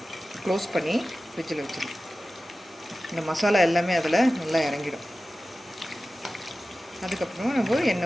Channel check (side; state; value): both; normal; correlation 0.95